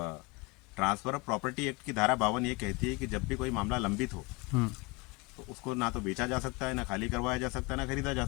ट्रांसफर ऑफ प्रॉपर्टी एक्ट की धारा 52 ये कहती है कि जब भी कोई मामला लंबित हो तो उसको ना तो बेचा जा सकता है, ना खाली करवाया जा सकता है, ना खरीदा जा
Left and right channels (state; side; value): quieter; right; 26.3 dB